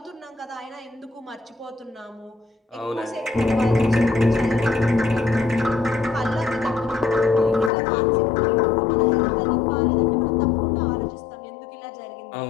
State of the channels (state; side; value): drops out; right; at 7.7 s